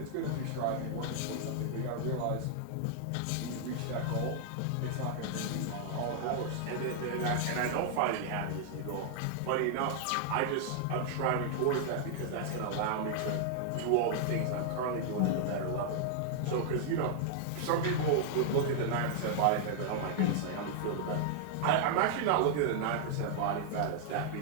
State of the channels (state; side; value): different; both; correlation -0.01